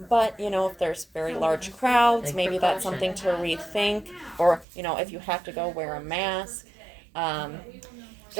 But, if there's very large crowds, Take maybe that's something to rethink. Or, if you have to go, wear a mask.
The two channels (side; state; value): left; drops out; at 4.7 s